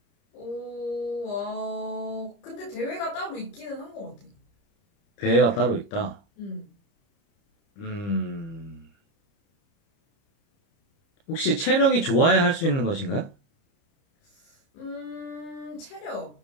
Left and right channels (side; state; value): right; late; 30 ms